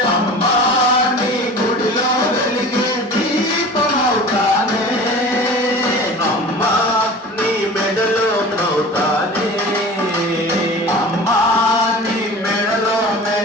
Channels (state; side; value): normal; both; correlation 0.38